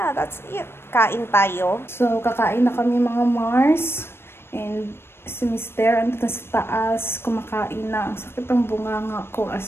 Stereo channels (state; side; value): late; right; 0.12 ms